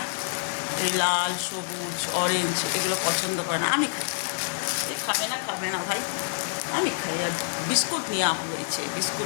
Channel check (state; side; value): silent; right; digital silence